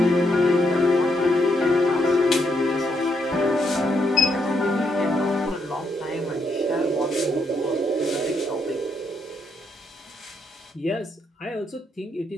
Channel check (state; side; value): normal; both; correlation 0.77